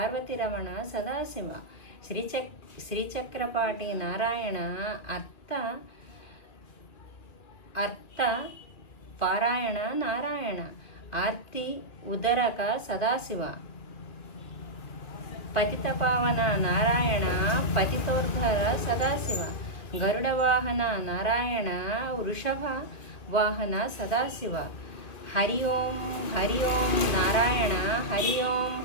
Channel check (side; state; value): right; late; 2.3 ms